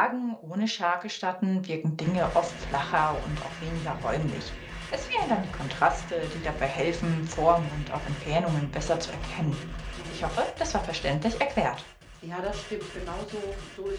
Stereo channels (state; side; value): identical; both; correlation 1.00